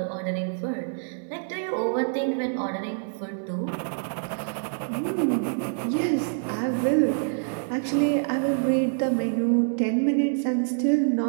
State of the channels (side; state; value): left; silent; digital silence